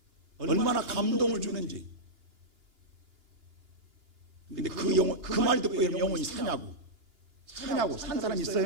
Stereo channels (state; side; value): late; left; 2.9 ms